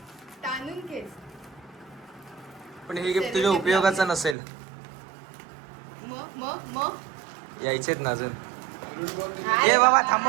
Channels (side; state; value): left; drops out; at 4.4 s